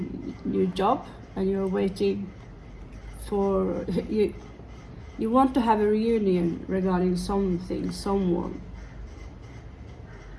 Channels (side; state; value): both; identical; correlation 1.00